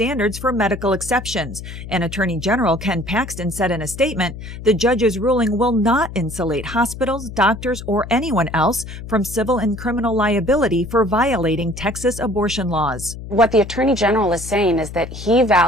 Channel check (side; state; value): left; noise; hum, 11 dB below the sound